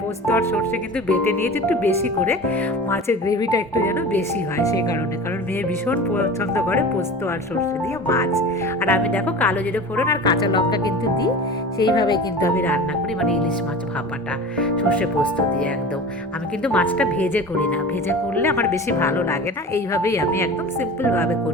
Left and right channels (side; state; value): both; normal; correlation 0.35